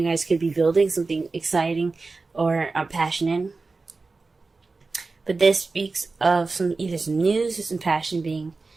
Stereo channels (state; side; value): quieter; left; 3.9 dB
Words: guys could be building something exciting or passionate. But this speaks of either some news or some passion